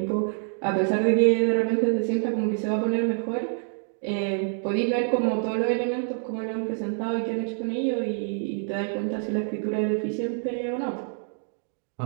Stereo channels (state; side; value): silent; left; 61 dB below the other